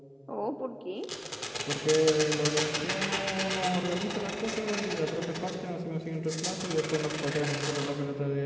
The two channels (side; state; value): both; identical; correlation 1.00